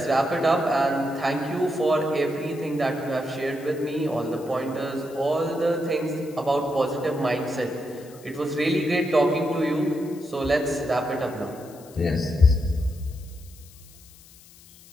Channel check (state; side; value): noise; left; hiss, 23 dB below the sound